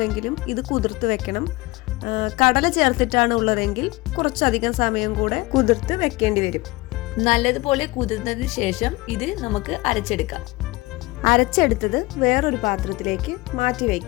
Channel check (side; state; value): right; quieter; 21.9 dB